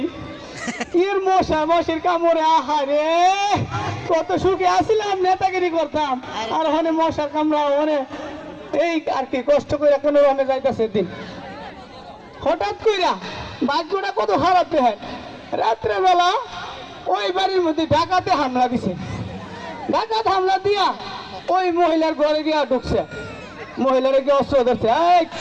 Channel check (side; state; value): both; identical; correlation 1.00